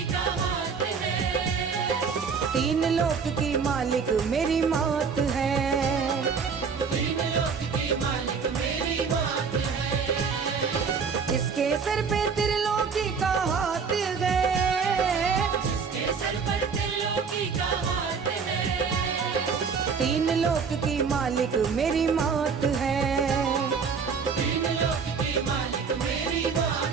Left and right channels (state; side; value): quieter; left; 5.7 dB